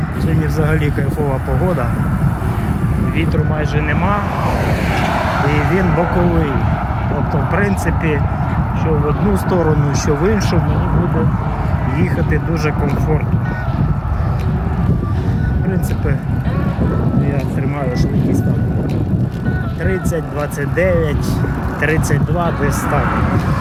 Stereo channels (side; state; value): both; identical; correlation 1.00